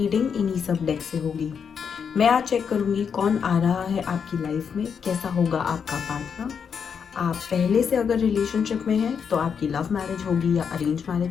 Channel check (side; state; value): right; quieter; 6.8 dB